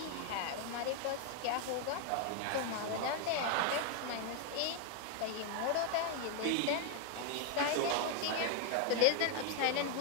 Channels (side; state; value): both; different; correlation 0.00